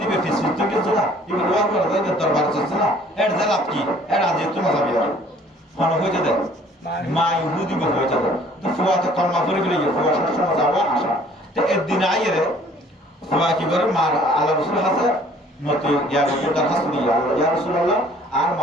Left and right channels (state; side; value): normal; both; correlation 0.56